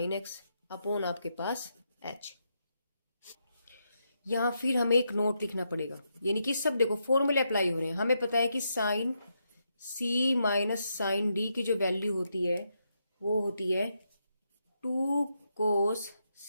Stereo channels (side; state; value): both; inverted; correlation -0.82